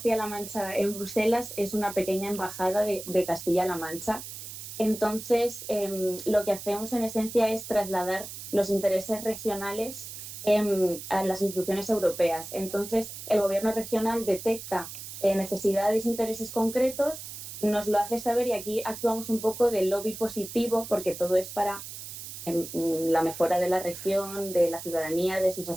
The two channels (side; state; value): right; noise; hiss, 11 dB below the sound